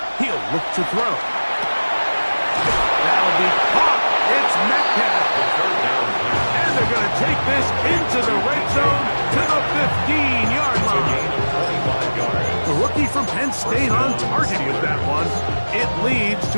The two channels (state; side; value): inverted; both; correlation -1.00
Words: He'll look to throw. That'll be caught. It's Metcalf. And they're going to take this into the red zone to the 15-yard line. The rookie from Penn State on target with that one. It leads